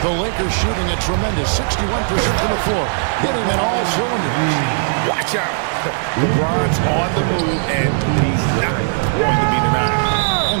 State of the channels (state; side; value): silent; left; digital silence